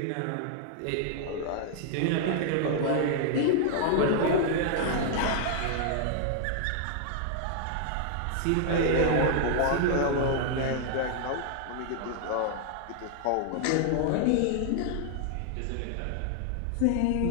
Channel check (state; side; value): different; both; correlation 0.00